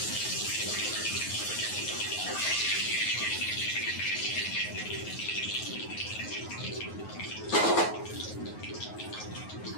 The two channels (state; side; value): late; right; 9.4 ms